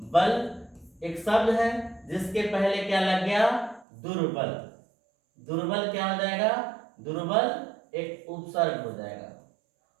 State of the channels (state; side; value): drops out; left; at 3.9 s